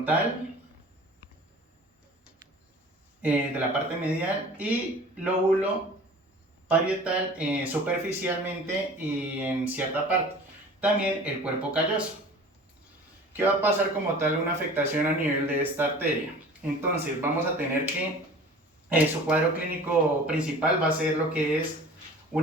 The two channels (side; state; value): both; normal; correlation 0.43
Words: de la parte medial y lóbulo parietal superficialmente y en cierta parte. También el cuerpo calloso. ¿Qué va a pasar como tal una afectación a nivel de esta arteria? Entonces vamos a tener que su cuadro clínico principal va a ser lo que es